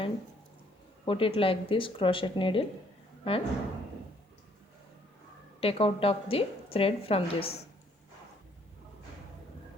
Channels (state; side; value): normal; both; correlation 0.64